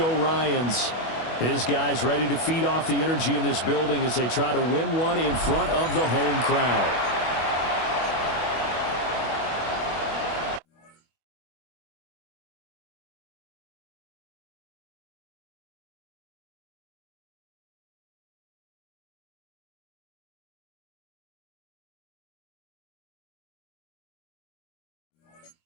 Ryans. His guys ready to feed off the energy in this building as they try to win one in front of the home crowd.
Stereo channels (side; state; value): right; late; 25 ms